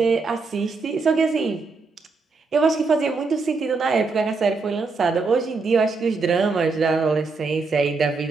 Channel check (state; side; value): quieter; left; 4.2 dB